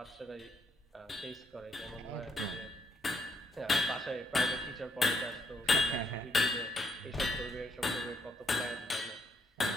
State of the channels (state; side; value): normal; both; correlation 0.75